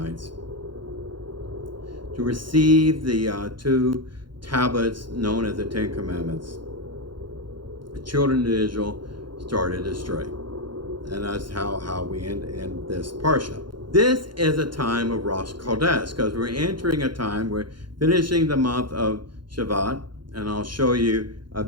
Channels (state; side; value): late; left; 0.72 ms